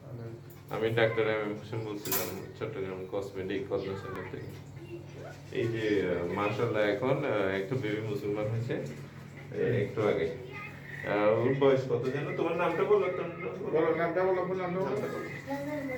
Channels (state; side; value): identical; both; correlation 1.00